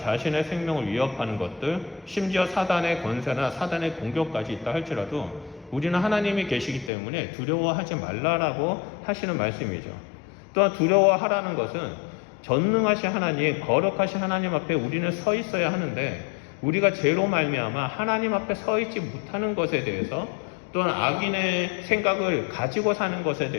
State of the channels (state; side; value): drops out; right; at 6.9 s